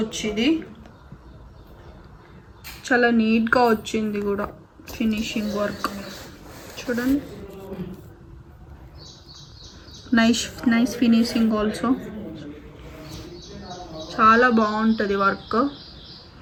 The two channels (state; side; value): identical; both; correlation 1.00